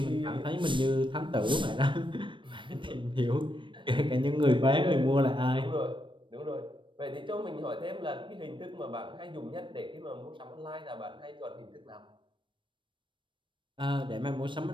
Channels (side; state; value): left; late; 0.24 ms